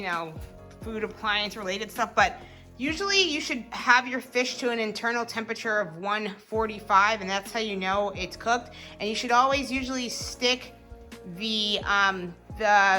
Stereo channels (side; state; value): both; identical; correlation 1.00